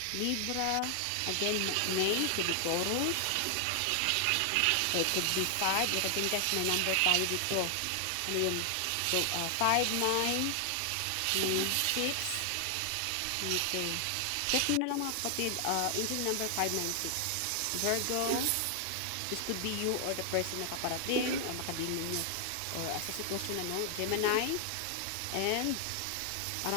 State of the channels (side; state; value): both; different; correlation 0.00